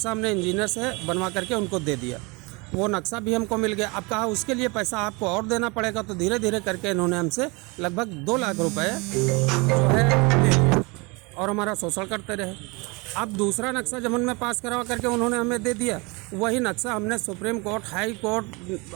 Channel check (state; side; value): quieter; left; 27.5 dB